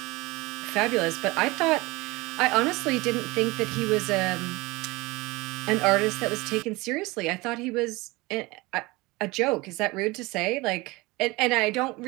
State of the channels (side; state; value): left; quieter; 22.7 dB